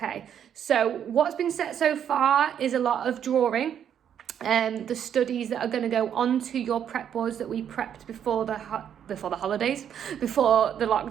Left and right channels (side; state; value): left; quieter; 9.0 dB